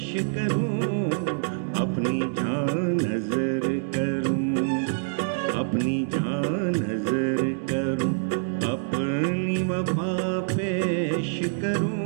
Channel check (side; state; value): left; silent; digital silence